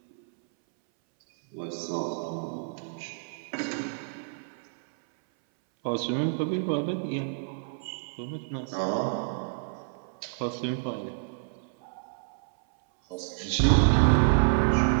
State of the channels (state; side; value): silent; left; 59 dB below the other